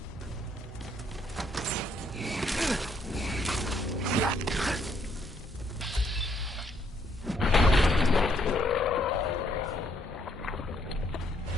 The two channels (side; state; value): both; normal; correlation 0.70